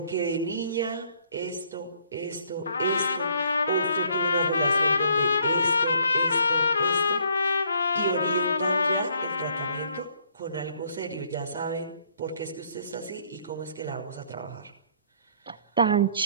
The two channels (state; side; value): inverted; both; correlation -0.64